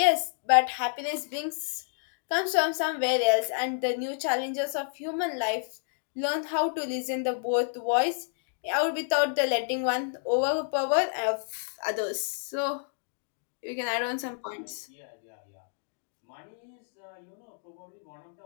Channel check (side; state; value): right; silent; digital silence